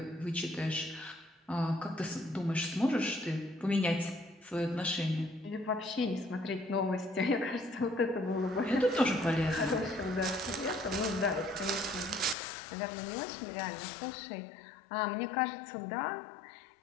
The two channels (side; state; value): right; drops out; at 12.4 s